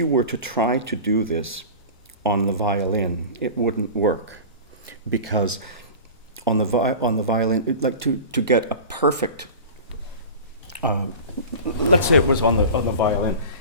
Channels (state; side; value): inverted; both; correlation -0.34